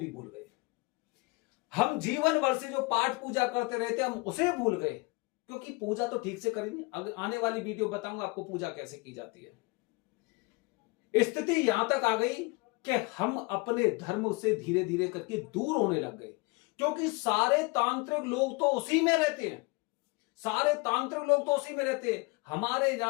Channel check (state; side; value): quieter; right; 26.5 dB